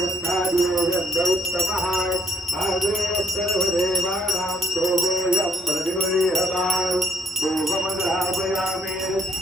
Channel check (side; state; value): both; normal; correlation 0.67